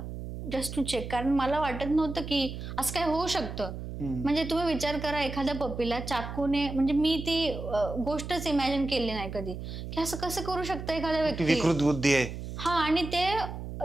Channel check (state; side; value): noise; right; hum, 8 dB below the sound